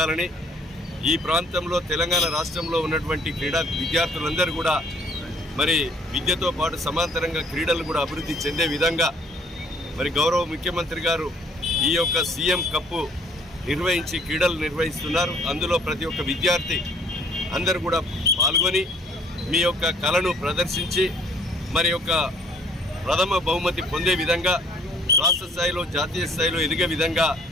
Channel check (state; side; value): normal; both; correlation 0.59